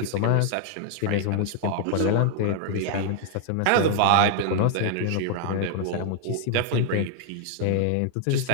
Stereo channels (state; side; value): different; both; correlation 0.00